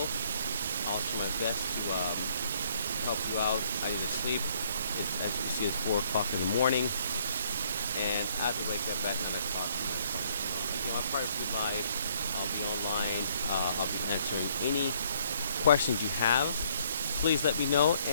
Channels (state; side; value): inverted; both; correlation -0.65